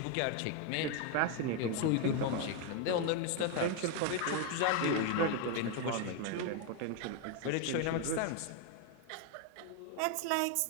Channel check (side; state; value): both; different; correlation 0.01